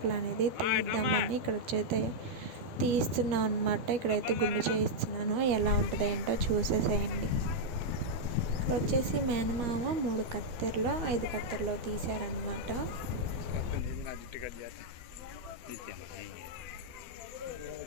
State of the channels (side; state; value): left; late; 12 ms